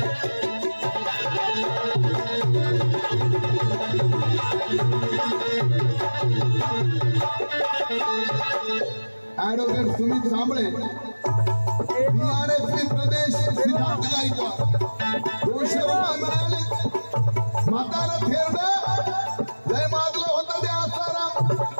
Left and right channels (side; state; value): both; inverted; correlation -1.00